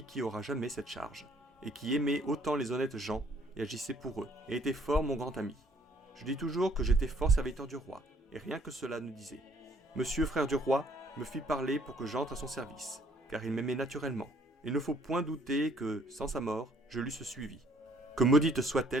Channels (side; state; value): both; normal; correlation 0.62